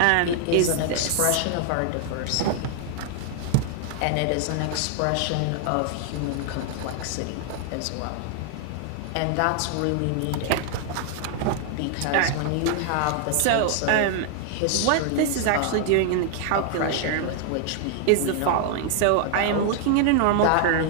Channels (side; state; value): both; different; correlation 0.00